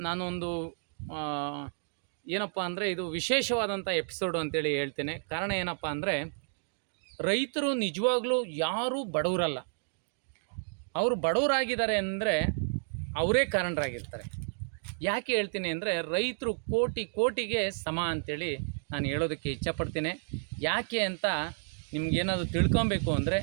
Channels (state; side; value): silent; left; digital silence